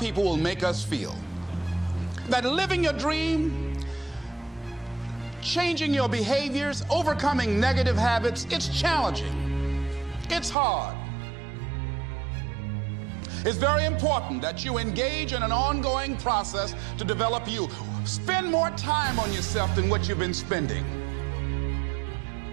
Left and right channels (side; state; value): left; drops out; at 10.6 s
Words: will make us feel. That living your dream, changing your behaviors, overcoming negative habits, it's challenging. It's hard. It's very important that you engage in an ongoing process to develop you. Spend more time on yourself than what you've been spending.